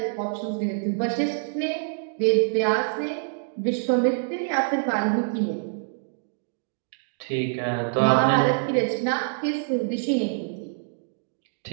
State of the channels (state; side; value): silent; left; digital silence